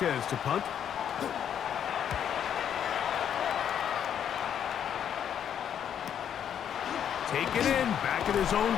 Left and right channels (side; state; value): right; quieter; 9.0 dB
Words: to punt. Taken in, back at his own